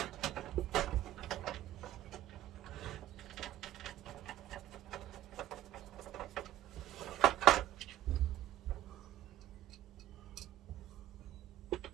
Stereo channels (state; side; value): quieter; left; 13.6 dB